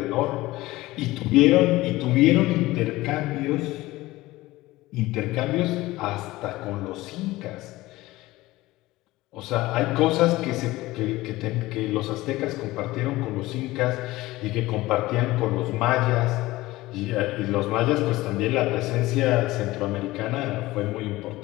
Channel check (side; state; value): right; quieter; 18.5 dB